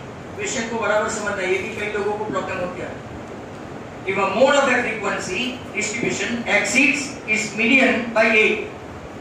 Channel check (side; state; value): both; identical; correlation 1.00